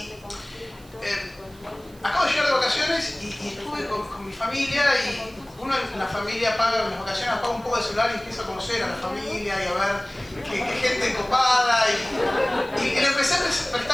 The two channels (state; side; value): noise; right; hiss, 26 dB below the sound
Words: acabo de llegar de vacaciones y estuve con mi familia, y uno en la familia paga, en las vacaciones apaga un poco de celular y empieza a conocer a la familia y a ver qué gente copada, y le empecé a